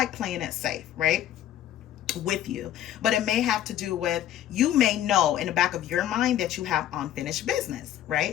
playing it safe, right, with you. But it may have to do with, you may know in the back of your mind that you have unfinished business,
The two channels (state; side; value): quieter; right; 11.9 dB